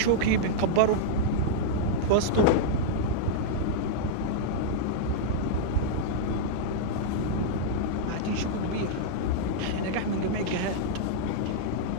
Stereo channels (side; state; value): both; different; correlation -0.02